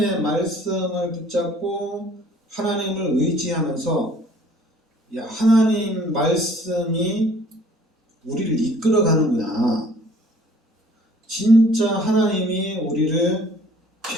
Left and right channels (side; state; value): both; normal; correlation 0.55